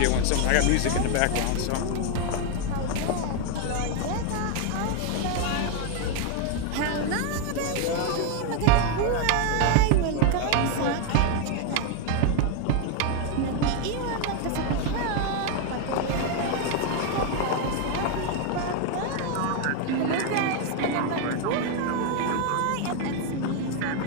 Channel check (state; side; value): different; both; correlation 0.01